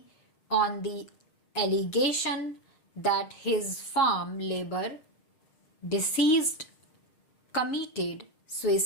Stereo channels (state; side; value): late; right; 6.5 ms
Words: on the allegation that his farm labor deceased committed